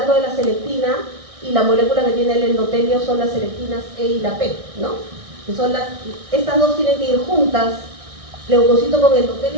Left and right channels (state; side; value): late; left; 1.6 ms